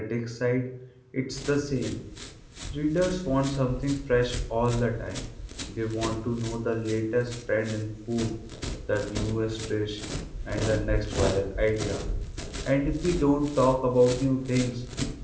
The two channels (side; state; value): both; identical; correlation 1.00